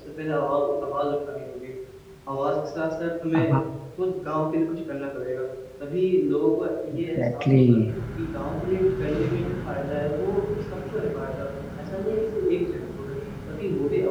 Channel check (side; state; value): both; identical; correlation 1.00